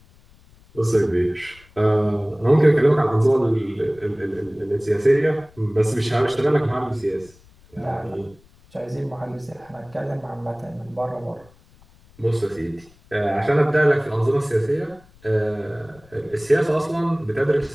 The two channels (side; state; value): left; noise; rumble, 28 dB below the sound